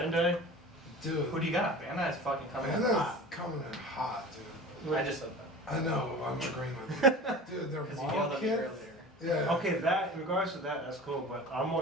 Dude, Who do you got? Bandai is fucking coming in Panda's hot. coming in hot, dude. I just said that. I know, I'm agreeing with you. Dude, their Because you model yelled at me kits. earlier. Yeah. Okay, that in regards to that, that's cool. But I'm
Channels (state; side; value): normal; both; correlation 0.37